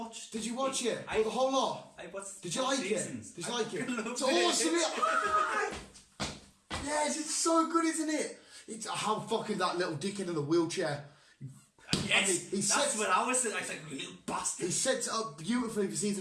Did you watch it? I- The whole lot? I watched. Did you like seasons. it? Did you like it? fucking It's loved awesome. Yes, it's so good, isn't it? It's how fucking that little dickhead in the wheelchair. Yes, he that's sets- what I was saying. I was like, you little bastard. He sets it up beautifully for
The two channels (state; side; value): identical; both; correlation 1.00